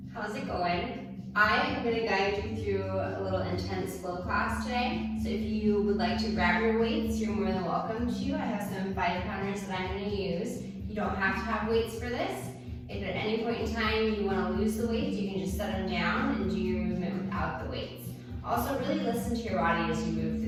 how's it going? I am going to guide you through a little intense flow class today. So if you would like to grab your weights, you're more than welcome to. I have some 5-pounders that I'm going to use. You don't have to have weights for this. If at any point in time you want to lose the weights, you can just set them down and do your movement without the weights. Also, really listen to your body as you move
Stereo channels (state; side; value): identical; both; correlation 1.00